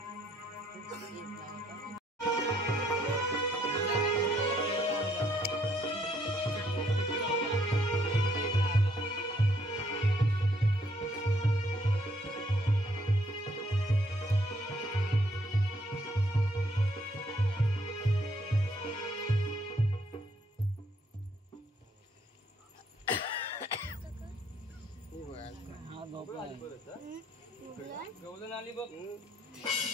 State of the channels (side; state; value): both; normal; correlation 0.69